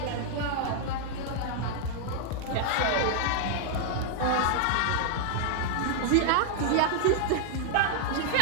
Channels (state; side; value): different; both; correlation -0.01